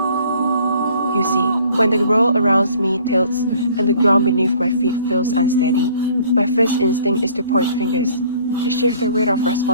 You see, when the world around me tilts and the ground beneath my feet feels unsteady, my first instinct is to point fingers, to shift the weight of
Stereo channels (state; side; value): inverted; both; correlation -0.55